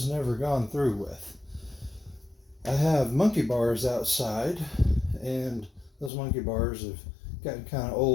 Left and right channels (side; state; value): right; drops out; at 6.1 s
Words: never gone through with. I have monkey bars outside, and those monkey bars have gotten kind of